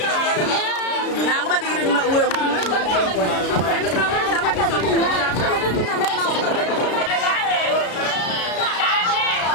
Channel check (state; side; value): late; right; 33 ms